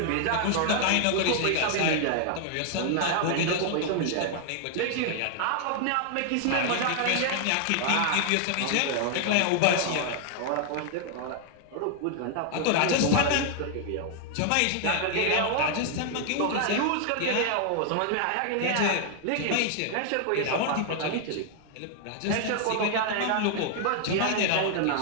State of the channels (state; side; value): different; both; correlation 0.00